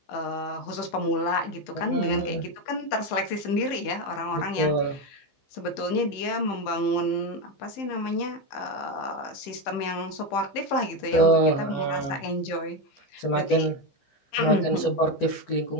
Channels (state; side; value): late; right; 15 ms